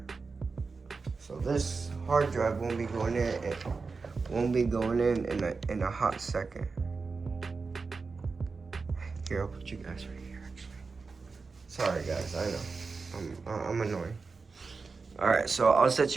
So this hard drive won't be going in. It won't be going in a hot second. Here, I'll put you guys right here actually. Sorry guys, I know. I'm annoying. Alright, so I'll set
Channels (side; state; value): left; quieter; 4.5 dB